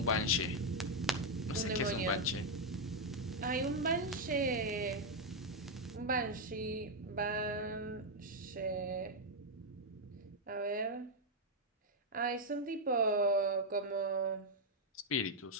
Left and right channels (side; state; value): both; normal; correlation 0.01